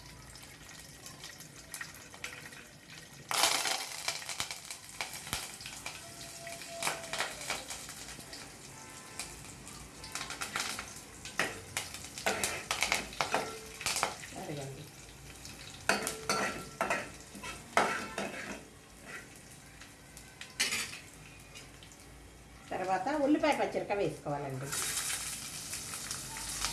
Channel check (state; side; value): identical; both; correlation 1.00